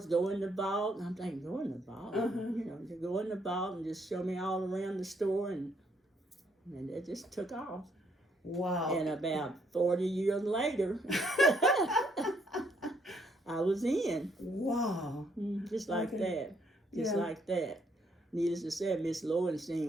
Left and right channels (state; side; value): normal; both; correlation 0.71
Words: go in the vault." And I'm thinking, go in the vault? To go in the vault and just show me all around the store. And that just took off. Wow. And about 40 years later, I was in. Wow. Just like that. Just Yeah. like that. Needless to say, Miss